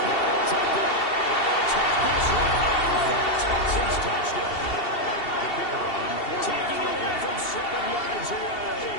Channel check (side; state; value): right; late; 2.7 ms